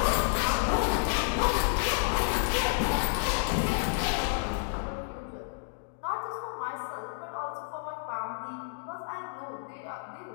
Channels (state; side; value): silent; right; digital silence